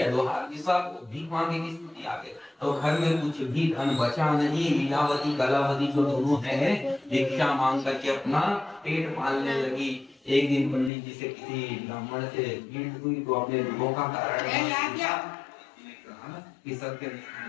लोहार की सब भीख मांगे की स्थिति आ गई। तो घर में कुछ भी धन बचा नहीं, लीलावती कलावती जो दोनों है भिक्षा मांग करके अपना पेट पालने लगी। एक दिन पंडित जी से किसी ब्राह्मण से भेंट हुई तो अपने दुखों का कारण कि सबके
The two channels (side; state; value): right; drops out; at 10.9 s